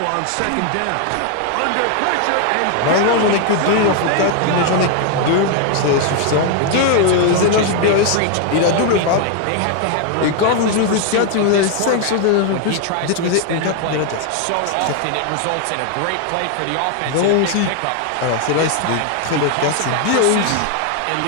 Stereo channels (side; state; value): both; different; correlation 0.00